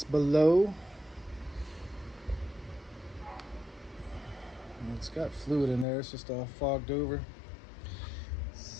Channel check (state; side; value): drops out; right; at 5.9 s